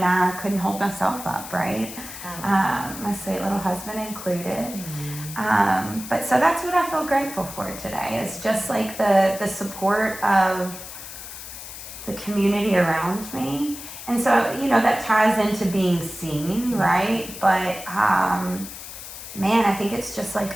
I couldn't hold myself up, right? My sweet little husband included. But so that's what I feel grateful for today, is just like the support of the community around me. And so, that ties into being seen, right? But, man, I think it's just like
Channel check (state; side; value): noise; left; hiss, 12 dB below the sound